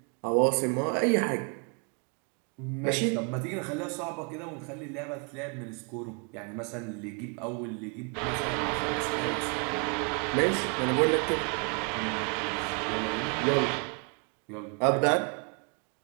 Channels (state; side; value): quieter; left; 36.4 dB